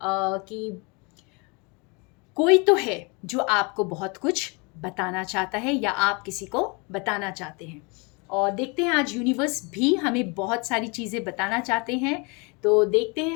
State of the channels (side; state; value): right; quieter; 30.3 dB